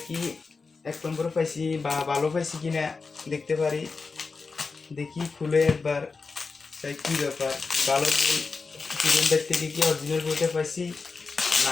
কি এক নম্বর পাইছি বা ভালো পাইছি কিনা দেখতে পারি। দেখি খুলে একবার, তাই কি ব্যাপার, ভালো বই সুফিয়ান ভাই থেকে কি অরিজিনাল বইটা পাইছি না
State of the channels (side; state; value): right; quieter; 4.5 dB